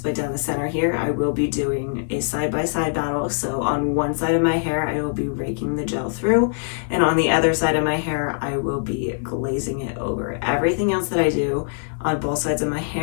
down the center here. I will be doing a side-by-side battle. So on one side of my hair, I will be raking the gel through, and on the other side of my hair, I will be glazing it over. Everything else that I do on both sides of my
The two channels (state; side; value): silent; right; 59 dB below the other